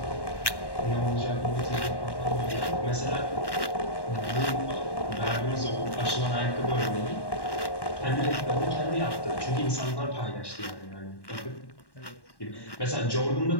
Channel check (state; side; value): late; right; 1.1 ms